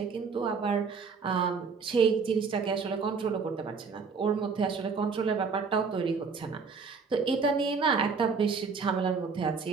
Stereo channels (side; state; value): left; quieter; 5.1 dB